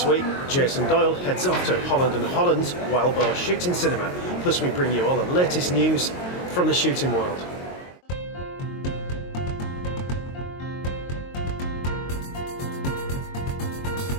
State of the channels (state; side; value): late; right; 22 ms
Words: week, Jason Doyle heads off to Holland Holland's Wild Boar Shooting Cinema. Plus we bring you all the latest news from the shooting world.